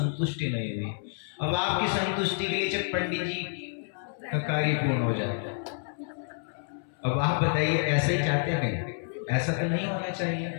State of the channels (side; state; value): right; silent; 59 dB below the other